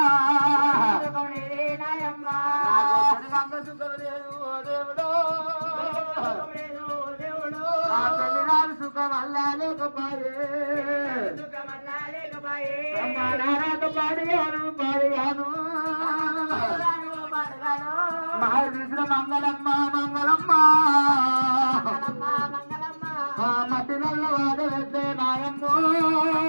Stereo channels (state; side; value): inverted; both; correlation -1.00